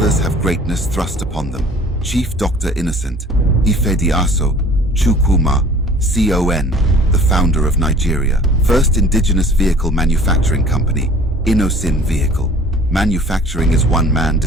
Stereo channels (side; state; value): both; normal; correlation 0.49